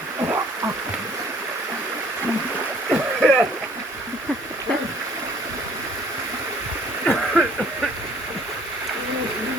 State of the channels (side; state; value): both; normal; correlation 0.57